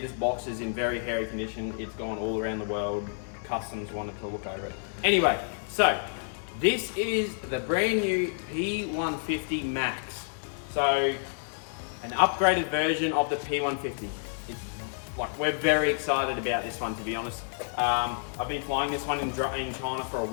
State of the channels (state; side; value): silent; right; digital silence